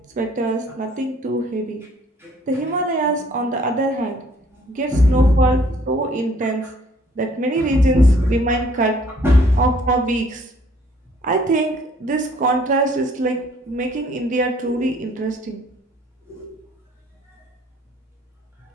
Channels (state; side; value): normal; both; correlation 0.60